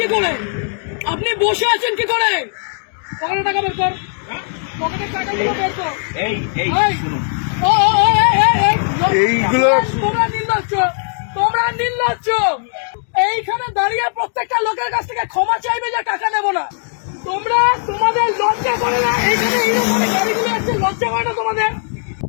কি করে? আপনি বসে আছেন কি করে? পকেটে টাকা বের কর, পকেটের টাকাগুলো বের কর। এইগুলো তোমরা নির্লজ্জ। এইখানে দাঁড়িয়ে প্রত্যেকটা লোকের কাছ থেকে ক্ষমা চাইবে যে টাকা নেবো না। তোমরা তোমাদের লজ্জা করে না? এইখানে এইরকম গাড়িগুলো আসছে, লজ্জা করে না তোমাদের?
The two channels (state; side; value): silent; right; 62 dB below the other